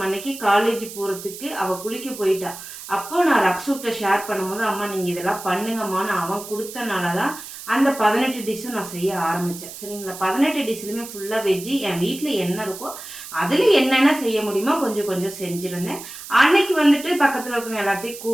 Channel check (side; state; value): right; noise; hiss, 13 dB below the sound